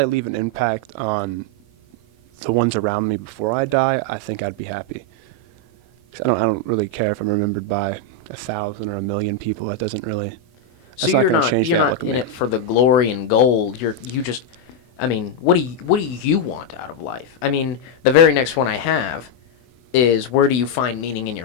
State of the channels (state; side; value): late; right; 24 ms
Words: leave an impact on the ones around me before I die, I think I'd be happy. 'Cause I don't really care if I'm remembered by 1,000 or 1,000,000 people. That doesn't really. So you're not in it for the glory and gold. You just, I mean, what do you want out of life? I mean, the very next one I have is, where do you find meaning in